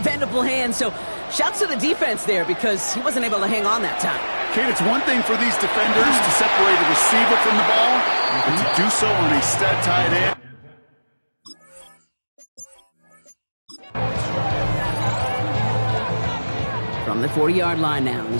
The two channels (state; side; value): inverted; both; correlation -1.00